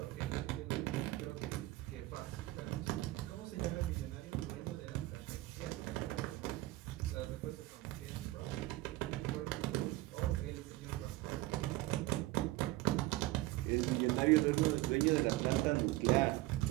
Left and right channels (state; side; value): quieter; left; 18.3 dB